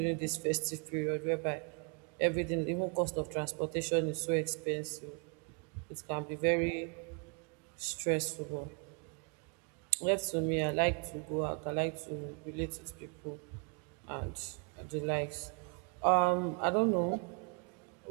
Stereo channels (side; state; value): left; quieter; 37.3 dB